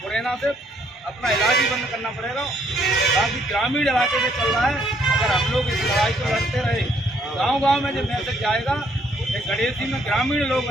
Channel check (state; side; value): normal; both; correlation 0.68